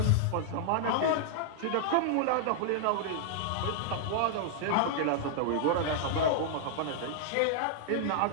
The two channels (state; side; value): different; both; correlation -0.01